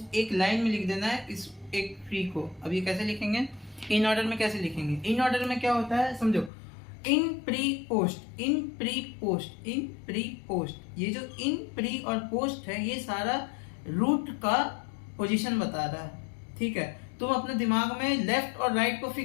एक लाइन में लिख देना है इस एक ट्री को। अब ये कैसे लिखेंगे? इन ऑर्डर में कैसे लिखेंगे? इन ऑर्डर में क्या होता है समझो, इन प्री पोस्ट, इन प्री पोस्ट, इन प्री पोस्ट। ये जो इन प्री और पोस्ट है ये सारा रूट का पोजीशन बता रहा है। ठीक है, तुम अपने दिमाग में लेफ्ट और राइट को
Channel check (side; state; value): right; drops out; at 6.5 s